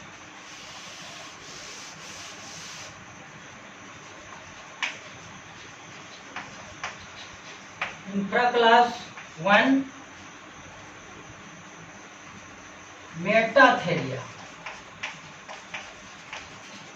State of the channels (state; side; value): identical; both; correlation 1.00